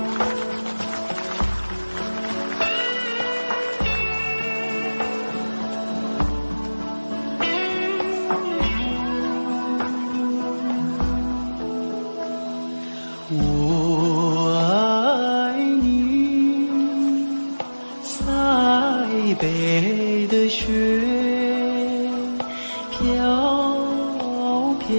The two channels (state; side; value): inverted; both; correlation -1.00